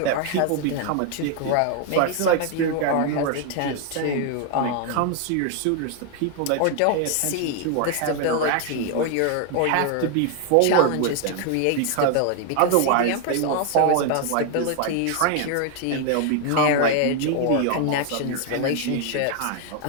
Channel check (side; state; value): both; different; correlation 0.00